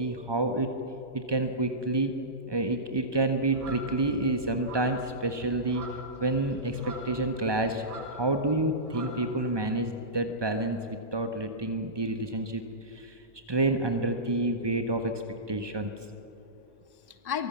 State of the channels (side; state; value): left; late; 1.2 ms